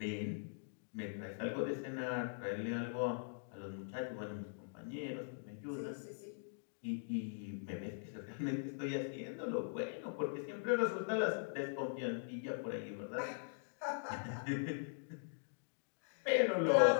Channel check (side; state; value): right; silent; digital silence